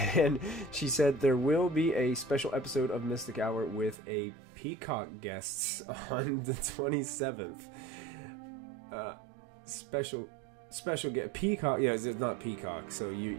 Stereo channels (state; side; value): drops out; left; at 4.0 s